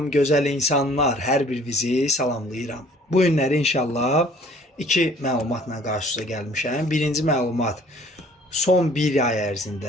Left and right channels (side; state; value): both; normal; correlation 0.55